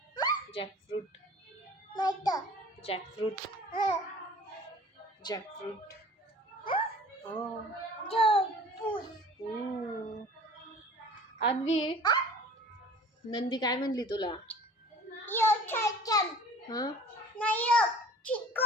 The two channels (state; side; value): normal; both; correlation 0.46